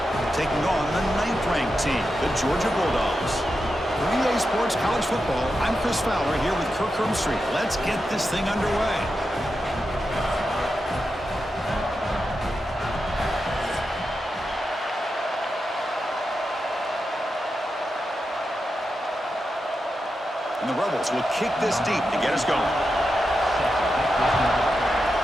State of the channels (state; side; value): normal; both; correlation 0.88